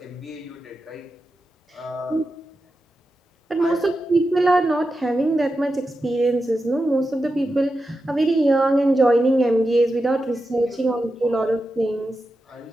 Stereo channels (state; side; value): normal; both; correlation 0.90